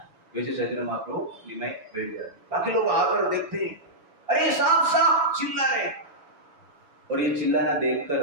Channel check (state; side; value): late; left; 7.1 ms